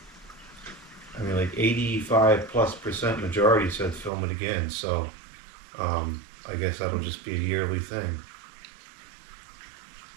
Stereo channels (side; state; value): left; drops out; at 4.1 s